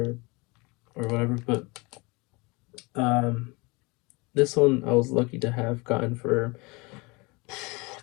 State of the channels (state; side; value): quieter; right; 26.3 dB